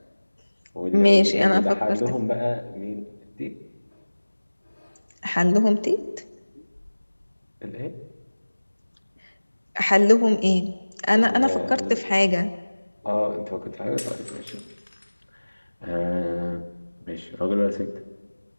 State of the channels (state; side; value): inverted; both; correlation -1.00